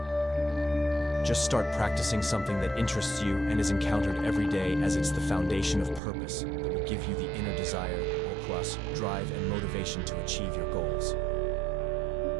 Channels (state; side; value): drops out; left; at 6.0 s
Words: Just start practicing something that interests you and is encountered every day, as it's the foundation of purpose that will give you the inner desire, plus drive and motivation to achieve your goals.